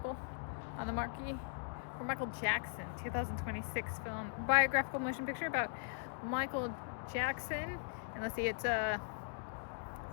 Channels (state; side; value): silent; right; digital silence